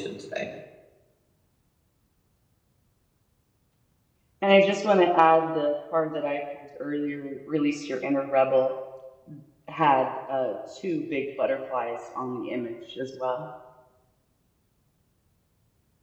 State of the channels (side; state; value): both; identical; correlation 1.00